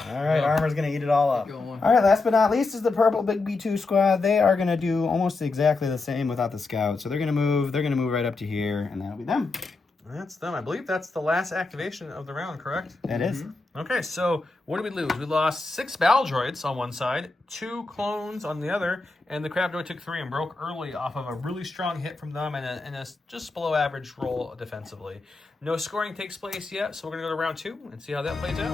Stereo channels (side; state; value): right; quieter; 3.6 dB